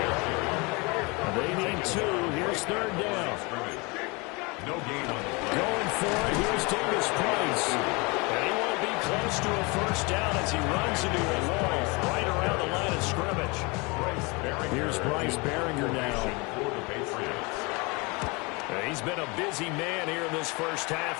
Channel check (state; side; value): quieter; right; 27.7 dB